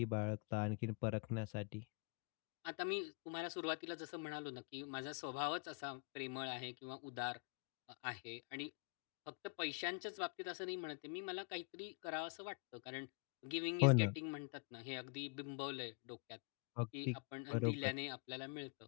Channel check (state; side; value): quieter; right; 31.6 dB